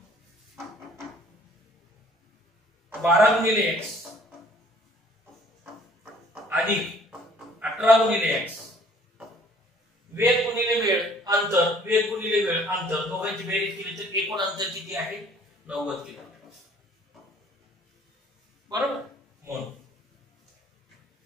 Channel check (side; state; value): both; normal; correlation 0.56